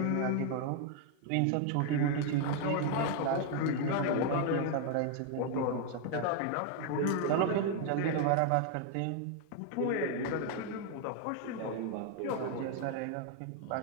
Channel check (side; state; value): both; different; correlation 0.00